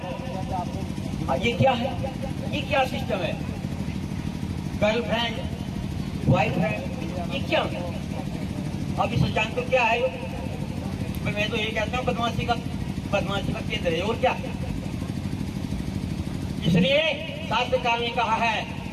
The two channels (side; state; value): both; identical; correlation 1.00